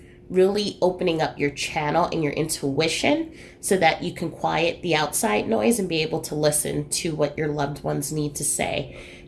really opening up your channel and your intuition so that you can quiet the outside noise and be able to listen to what your loved ones need to say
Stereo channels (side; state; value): both; identical; correlation 1.00